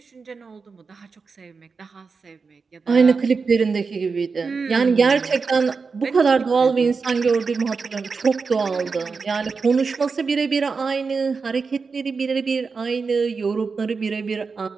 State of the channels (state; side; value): quieter; left; 4.9 dB